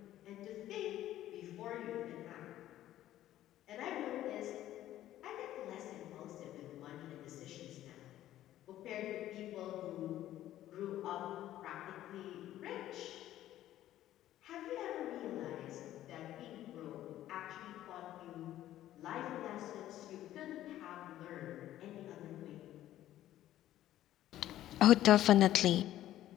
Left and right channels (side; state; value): right; quieter; 13.3 dB